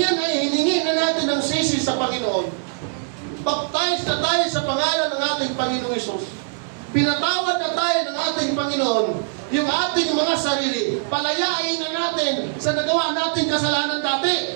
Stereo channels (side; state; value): left; silent; digital silence